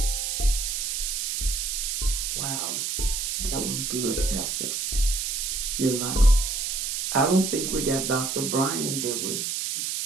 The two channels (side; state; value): right; noise; hiss, 1 dB below the sound